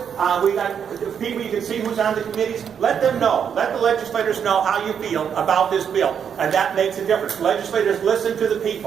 we got people, you can see who's on the committees. Let them know. Let the legislators know how you feel about this bill. And that makes a difference. Legislators listen to the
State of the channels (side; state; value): left; quieter; 7.7 dB